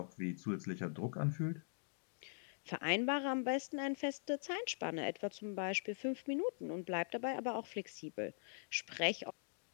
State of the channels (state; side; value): silent; right; digital silence